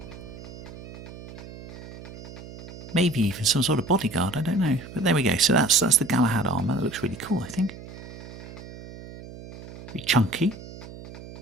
Maybe even some sort of bodyguard, I don't know. But there we go. So that's the Galahad armour. That looks really cool, I think. Pretty chunky.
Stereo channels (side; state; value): right; noise; hum, 14 dB below the sound